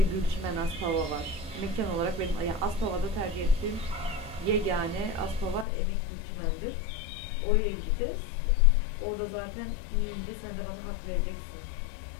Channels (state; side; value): drops out; right; at 5.7 s